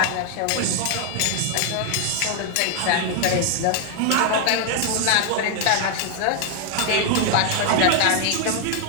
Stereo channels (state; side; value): different; both; correlation 0.00